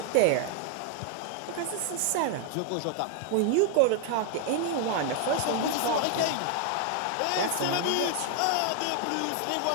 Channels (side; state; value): both; different; correlation 0.00